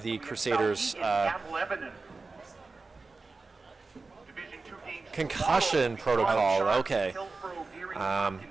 Crusaders. Concussion protocol. Okay.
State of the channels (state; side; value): quieter; left; 3.9 dB